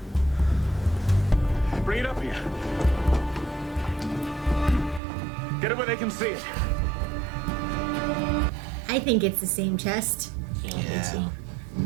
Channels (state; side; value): drops out; left; at 5.0 s